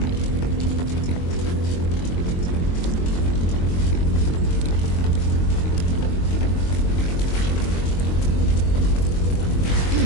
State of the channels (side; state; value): right; late; 22 ms